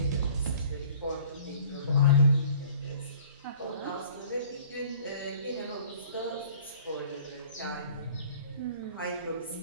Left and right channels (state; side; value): inverted; both; correlation -0.51